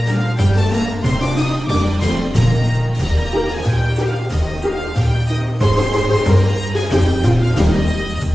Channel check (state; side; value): normal; both; correlation 0.95